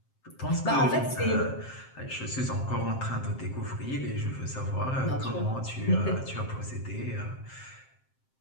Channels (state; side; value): late; right; 7.6 ms